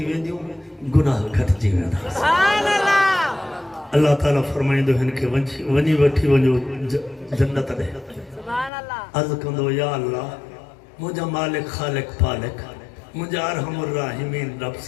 وے دیوں گناہ گھٹ جی وے دا اللہ تعالیٰ فرمائیں دو ہن کے ونی وٹھی ونجو جنت دے عرض کندو یا اللہ مجھا مالک خالق پالک مجھا ارحم الراحمین رب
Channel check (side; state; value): right; drops out; at 8.7 s